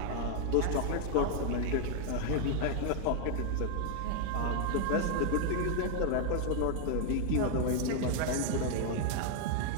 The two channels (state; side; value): different; both; correlation 0.00